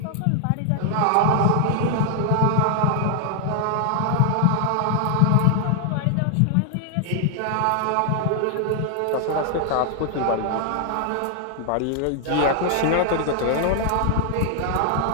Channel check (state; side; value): different; both; correlation 0.00